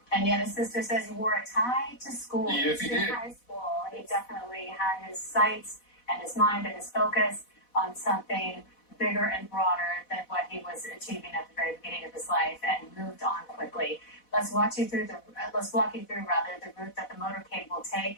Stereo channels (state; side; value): late; right; 4.1 ms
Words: And yet his sister says he wore a tie to school. Yes, he did. High school. He definitely had his sights and his mind and his focus on something bigger and broader than what he was achieving at the very beginning of his life, and moved on quickly. Let's walk you through the route that the motorcade will take